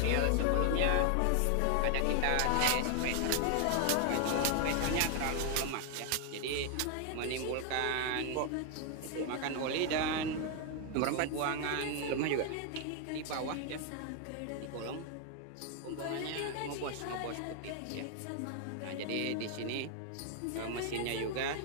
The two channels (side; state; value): both; different; correlation 0.00